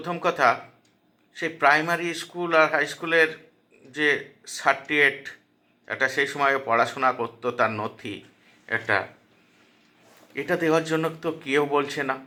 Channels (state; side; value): identical; both; correlation 1.00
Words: কথা, সেই প্রাইমারি স্কুল আর হাই স্কুলের যে সার্টিফিকেট, একটা সেই সময় পড়াশোনা করতো তার নথি একটা, এটা দেওয়ার জন্য তো কেউ বলছে না।